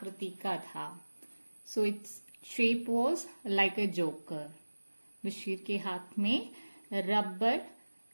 का था. So its shape was like a joker. Bashir के हाथ में रबर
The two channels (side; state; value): both; inverted; correlation -1.00